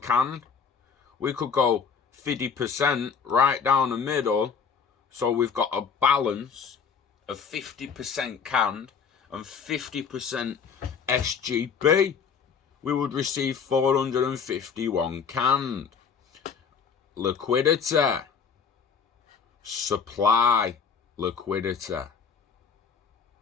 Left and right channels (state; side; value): quieter; right; 6.2 dB